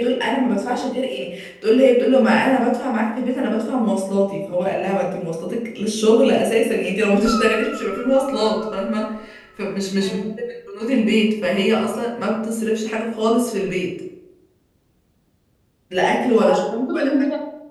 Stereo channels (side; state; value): both; identical; correlation 1.00